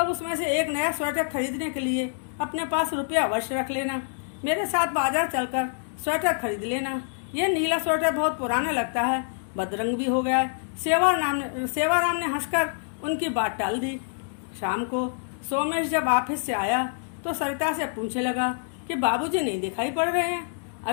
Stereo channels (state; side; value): silent; right; 61 dB below the other